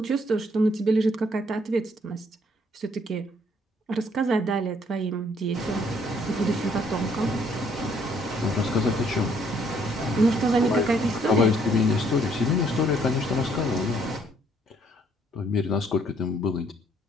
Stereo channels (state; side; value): normal; both; correlation 0.66